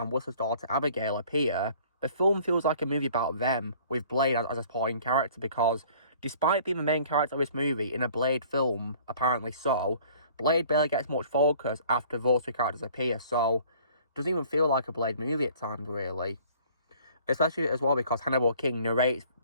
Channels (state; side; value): inverted; both; correlation -0.53